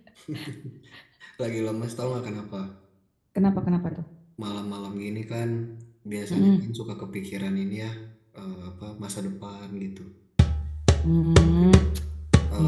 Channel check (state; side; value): identical; both; correlation 1.00